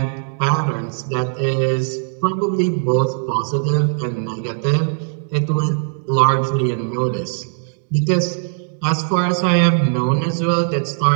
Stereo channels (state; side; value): silent; left; digital silence